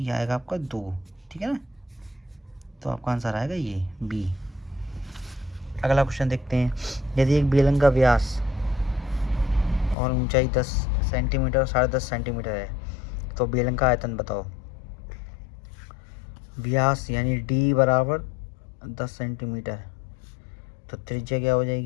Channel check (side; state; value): right; drops out; at 10.0 s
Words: आएगा आपका 2, ठीक है ना। तो आपका आंसर आएगा ये बी। अगला क्वेश्चन देखते हैं। यदि एक बेलन का व्यास और ऊंचाई 10 सेंटीमीटर और 10.5 सेंटीमीटर है तो बेलन का आयतन बताओ। व्यास यानी डी बराबर 10 सेंटीमीटर, तो त्रिज्या क्या हो